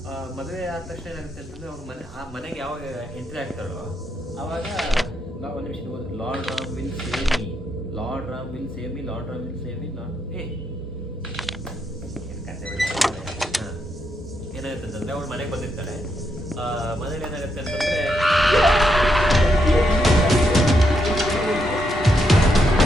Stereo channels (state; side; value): normal; both; correlation 0.80